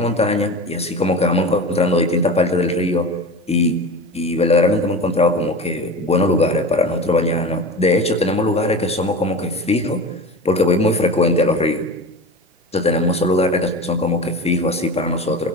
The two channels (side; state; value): both; normal; correlation 0.31